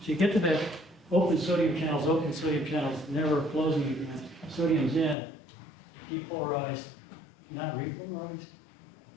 So you get to that open sodium channels, never closing again. Sodium's in, depolarized, not repolarized,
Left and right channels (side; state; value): right; drops out; at 5.2 s